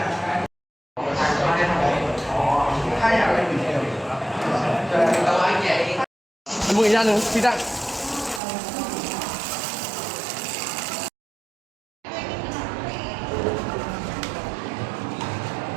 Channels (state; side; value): drops out; left; at 8.4 s